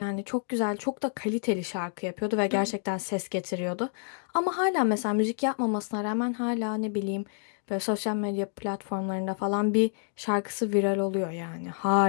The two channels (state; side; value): silent; right; digital silence